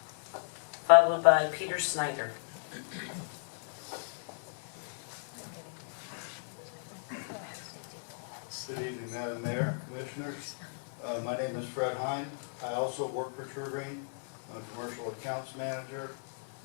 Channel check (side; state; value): right; silent; 54 dB below the other